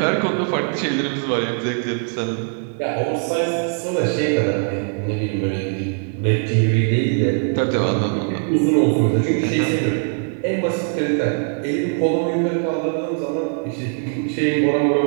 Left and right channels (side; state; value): left; silent; 56 dB below the other